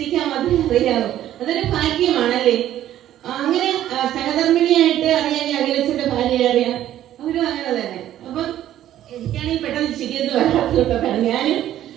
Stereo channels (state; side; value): quieter; left; 12.3 dB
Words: മാത്രമേ അറിയാവൂ. അതൊരു ഭാഗ്യമാണല്ലേ. അങ്ങനെ സഹധർമ്മിണിയായിട്ട് അറിയാൻ അഖിലച്ചന്റെ ഭാര്യയെ അറിയാം, അവരും അങ്ങനെ തന്നെ. അപ്പം എനിക്കാണെങ്കിൽ പെട്ടെന്ന് ചിരിയൊന്നും വരാത്തതുകൊണ്ടാണ് ഞാനും